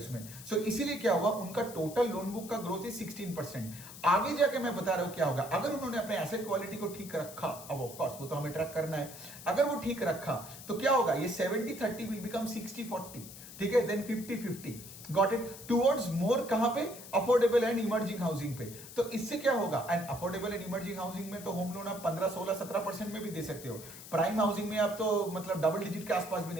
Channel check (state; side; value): noise; left; hiss, 14 dB below the sound